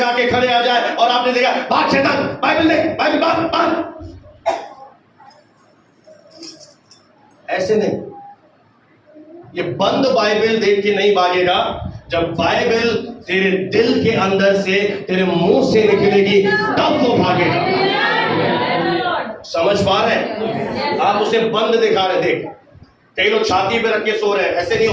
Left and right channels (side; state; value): both; identical; correlation 1.00